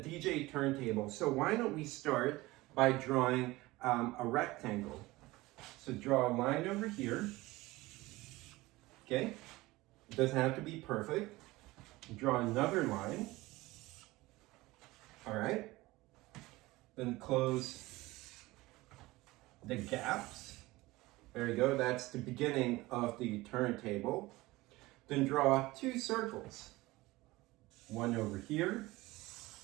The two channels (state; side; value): quieter; left; 19.9 dB